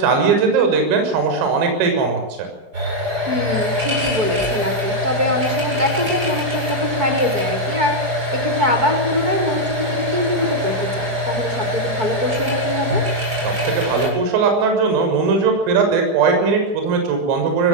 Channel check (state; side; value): late; left; 4.9 ms